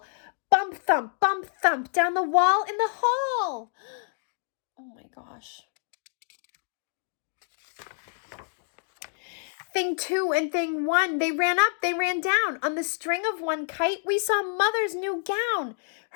Bump, thump down the wall in the hall. Oh my gosh. Thing two and thing one, they ran up, they ran down. On the string of one kite, we saw Mother's new gown.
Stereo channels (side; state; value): right; silent; 60 dB below the other